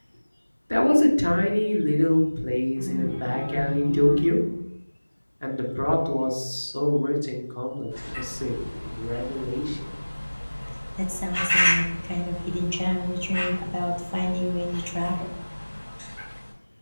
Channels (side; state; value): both; inverted; correlation -1.00